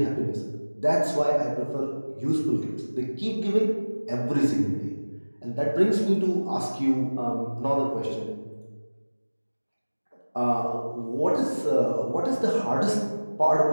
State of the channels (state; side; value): inverted; both; correlation -1.00